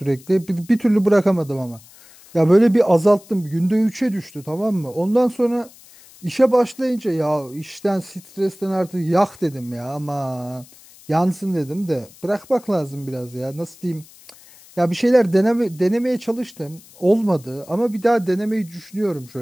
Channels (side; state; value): left; noise; hiss, 24 dB below the sound